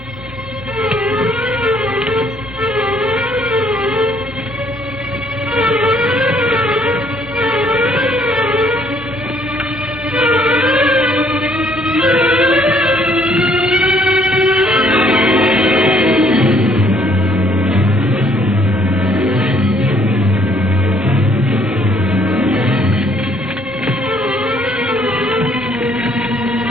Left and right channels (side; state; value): both; normal; correlation 0.64